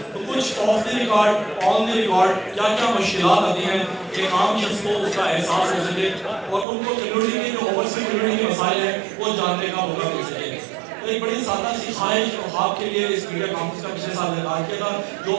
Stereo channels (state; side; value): drops out; left; at 6.7 s